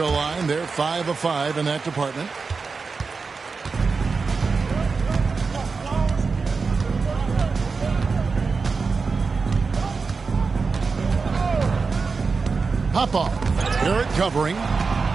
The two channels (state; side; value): quieter; left; 4.6 dB